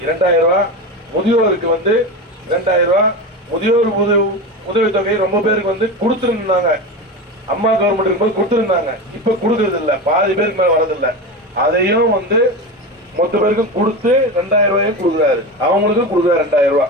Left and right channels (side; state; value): both; normal; correlation 0.23